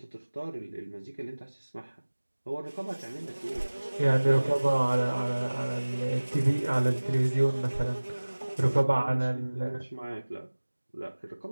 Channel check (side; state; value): both; inverted; correlation -1.00